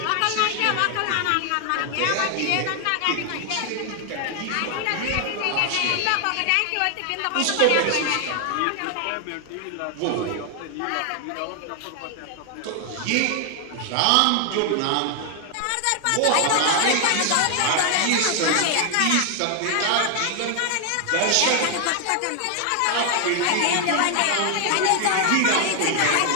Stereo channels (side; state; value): both; different; correlation 0.00